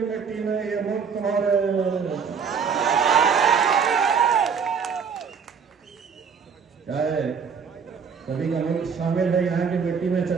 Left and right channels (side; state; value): left; quieter; 6.3 dB